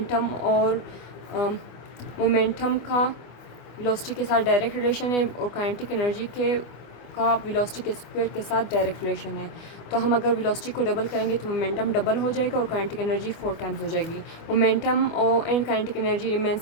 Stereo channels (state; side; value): late; right; 25 ms